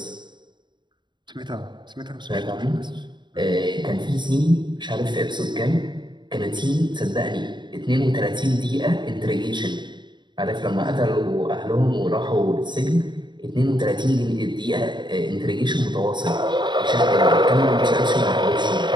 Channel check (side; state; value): left; late; 0.22 ms